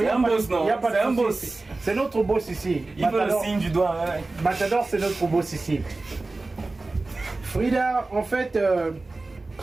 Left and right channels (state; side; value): quieter; left; 3.3 dB